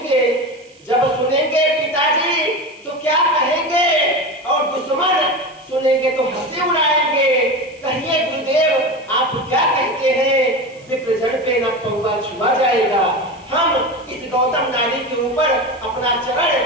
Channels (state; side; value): noise; right; hiss, 30 dB below the sound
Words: जब सुनेंगे पिताजी तो क्या कहेंगे, और दुश्मन सुनेंगे तो हंसी उड़ाएंगे। कहिए गुरुदेव आप क्या कहते हैं, विप्रजन पे न पौवा छुआ जाएगा। हम इस गौतम नारी के ऊपर अपना